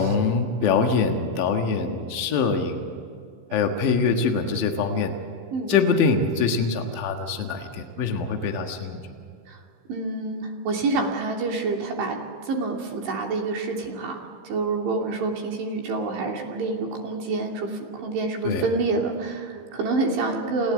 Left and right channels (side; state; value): left; late; 15 ms